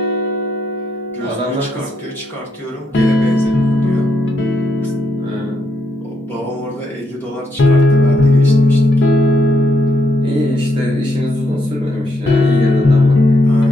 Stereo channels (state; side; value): normal; both; correlation 0.78